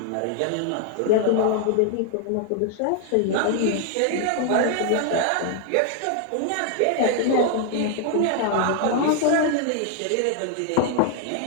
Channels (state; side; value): different; both; correlation 0.00